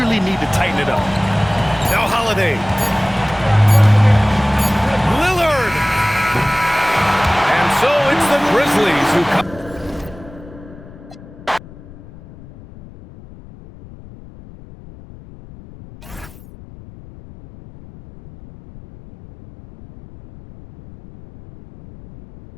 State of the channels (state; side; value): noise; left; rumble, 19 dB below the sound